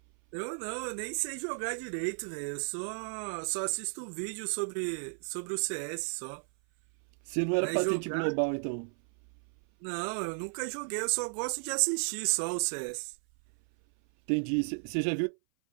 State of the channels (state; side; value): silent; left; 55 dB below the other